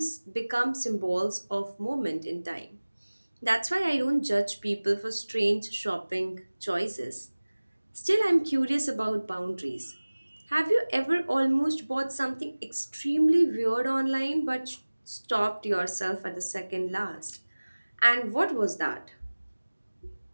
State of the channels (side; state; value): both; inverted; correlation -1.00